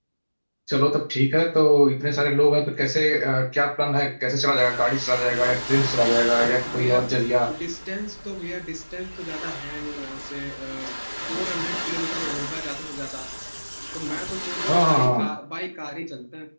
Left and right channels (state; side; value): inverted; both; correlation -1.00